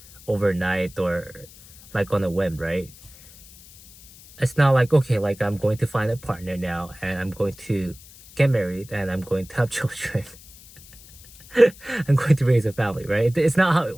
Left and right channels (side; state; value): left; noise; hiss, 22 dB below the sound